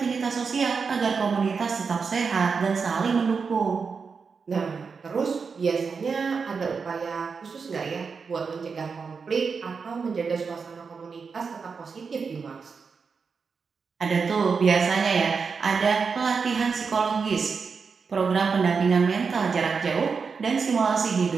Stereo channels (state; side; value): quieter; left; 5.3 dB